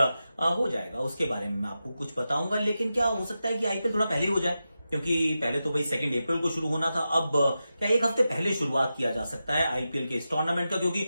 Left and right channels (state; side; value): inverted; both; correlation -0.91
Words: हो जाएगा, उसके बारे में मैं आपको कुछ बताऊंगा। लेकिन क्या हो सकता है कि आईपीएल थोड़ा पहले हो जाए, क्योंकि पहले तो भाई 2 अप्रैल को शुरू होना था। अब क्या एक हफ्ते पहले शुरुआत किया जा सकता है आईपीएल के इस टूर्नामेंट का? क्योंकि